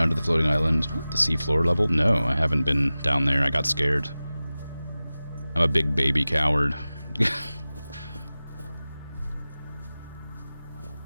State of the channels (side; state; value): both; inverted; correlation -0.97